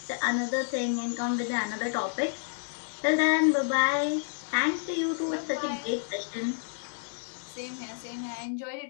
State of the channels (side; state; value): right; silent; digital silence